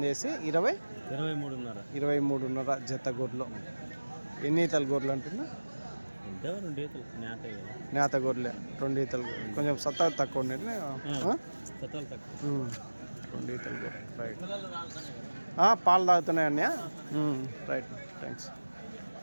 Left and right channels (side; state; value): both; inverted; correlation -1.00